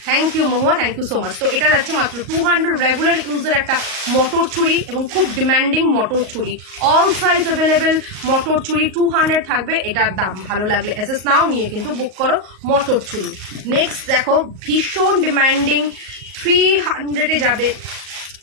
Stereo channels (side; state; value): left; late; 38 ms